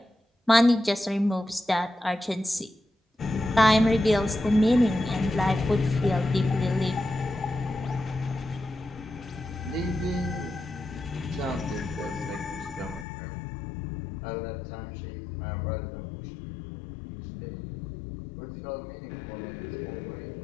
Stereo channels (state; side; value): drops out; right; at 13.1 s